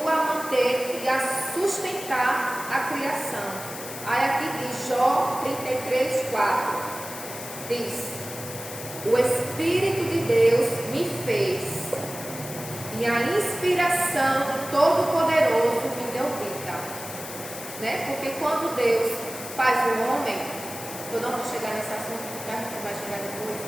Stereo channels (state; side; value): noise; left; hiss, 11 dB below the sound